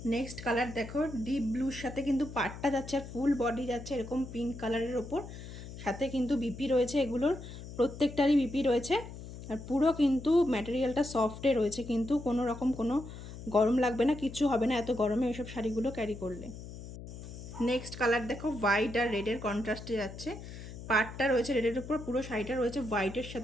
নেক্সট কালার দেখো, ডিপ ব্লুর সাথে কিন্তু পাড়টা যাচ্ছে, আর ফুল বডি যাচ্ছে এরকম পিঙ্ক কালারের ওপর, সাথে কিন্তু বিপি রয়েছে। এগুলোর প্রত্যেকটারই বিপি রয়েছে, আর পুরো কিন্তু ম্যাটেরিয়ালটা সফটে রয়েছে, কিন্তু কোনো রকম কোনো গরম লাগবে না, কিচ্ছু হবে না এত গরমে এইসব শাড়িগুলো ক্যারি করলে। নেক্সট কালার দেখো, হোয়াইট আর রেডের কন্ট্রাস্টে যাচ্ছে, পাড়টা রয়েছে রেডের উপর, পুরো শাড়িটা রয়েছে হোয়াইটের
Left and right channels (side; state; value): left; noise; hum, 12 dB below the sound